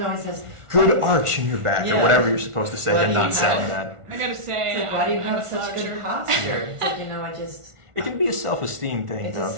always says Good arch in your back, or Yeah. whatever you're supposed to say, Why and do not you sound have- bad. I gotta say, It's like, why do you I'm have a such sloucher. good posture? It's like, I just. It can be a self-esteem thing, It's though, a for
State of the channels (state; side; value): late; left; 1.4 ms